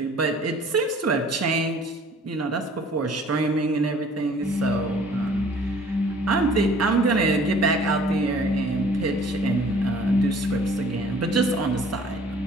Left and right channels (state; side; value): normal; both; correlation 0.53